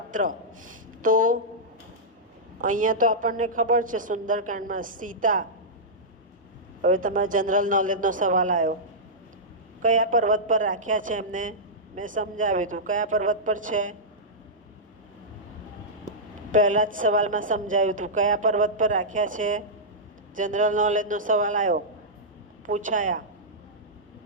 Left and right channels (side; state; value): both; normal; correlation -0.11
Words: તો અહીંયા તો આપણને ખબર છે સુંદરકાંડમાં સીતા. હવે તમારા જનરલ નોલેજનો સવાલ આવ્યો, કયા પર્વત પર રાખ્યા છે એમને મેં સમજાવ્યું હતું. કયા પર્વત પર છે? પહેલા જ સવાલમાં સમજાવ્યું હતું. કયા પર્વત પર રાખ્યા છે? જનરલ નોલેજનો સવાલ આવ્યો, પૂછાયા.